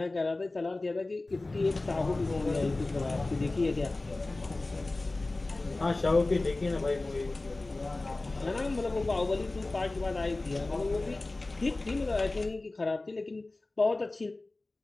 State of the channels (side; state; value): right; quieter; 3.1 dB